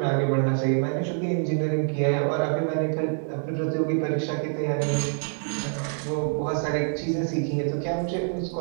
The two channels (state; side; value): silent; left; 61 dB below the other